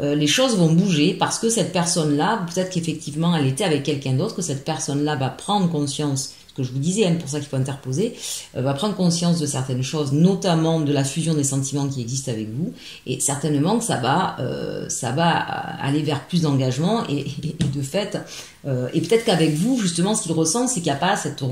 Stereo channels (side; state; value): both; identical; correlation 1.00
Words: les choses vont bouger parce que cette personne-là, peut-être qu'effectivement elle était avec quelqu'un d'autre, que cette personne-là va prendre conscience, ce que je vous disais, pour ça qu'il faut interposer, va prendre conscience de certaines choses, notamment de la fusion des sentiments qui existent avec vous, et certainement que ça va aller vers plus d'engagement et de fait, et peut-être qu'avec vous, justement, ce qu'il ressent, c'est qu'il n'y a pas cette